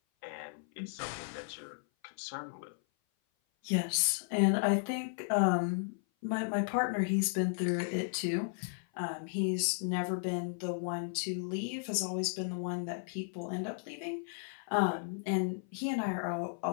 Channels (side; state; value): right; silent; 55 dB below the other